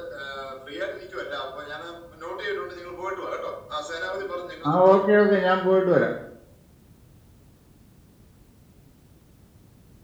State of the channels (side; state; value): both; identical; correlation 1.00